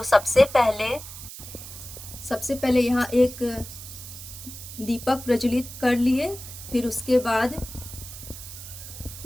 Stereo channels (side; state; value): right; noise; hiss, 13 dB below the sound